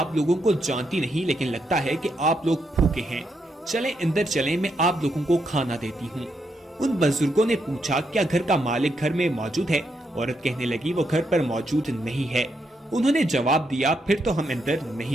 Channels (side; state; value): both; normal; correlation 0.80